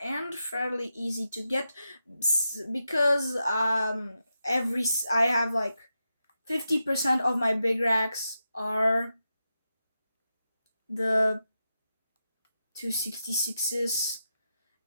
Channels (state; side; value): inverted; both; correlation -0.88